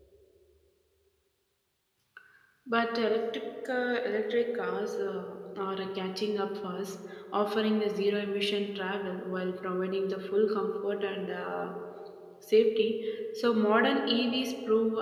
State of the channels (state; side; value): identical; both; correlation 1.00